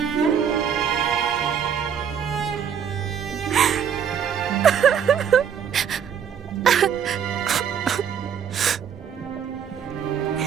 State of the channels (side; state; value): left; quieter; 8.0 dB